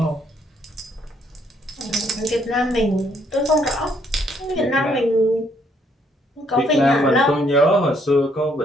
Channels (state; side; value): normal; both; correlation 0.69